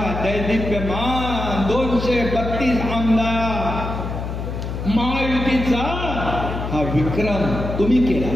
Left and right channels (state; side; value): noise; left; hum, 5 dB below the sound